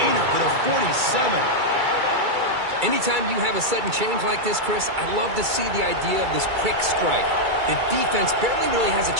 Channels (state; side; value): late; left; 2.3 ms